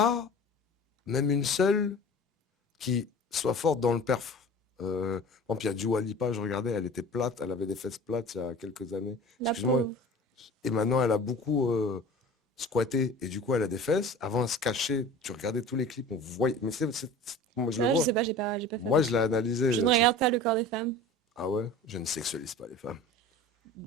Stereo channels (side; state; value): both; normal; correlation 0.40